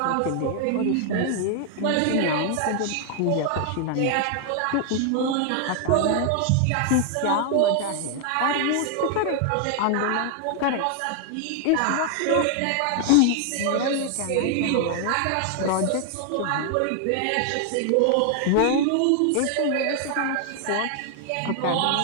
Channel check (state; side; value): different; both; correlation 0.00